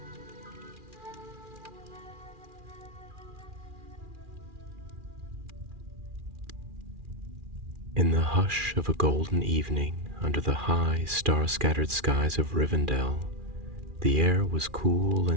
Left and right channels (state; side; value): late; left; 2.4 ms